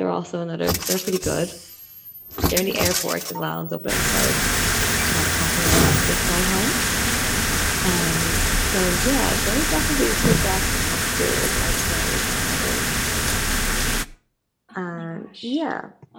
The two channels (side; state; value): both; identical; correlation 1.00